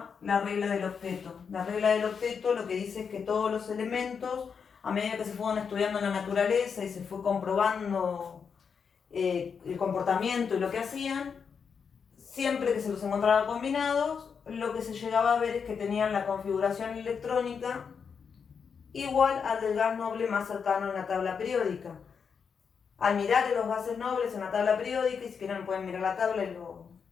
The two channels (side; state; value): right; quieter; 6.3 dB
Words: la regla del octeto. La regla del octeto lo que dice es que todos los elementos, a medida que se fueron estudiando en la naturaleza y se fue comprobando el comportamiento y lo que hacían, siempre que se los encontraba combinados, lo que se llegaba a ver es que tenían la configuración electrónica igual al del gas noble más cercano en la tabla periódica. Al mirar los gases nobles en la tabla periódica, y si quieren pueden mirar la tabla y